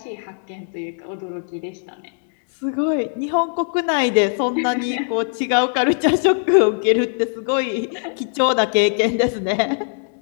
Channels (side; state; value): right; silent; digital silence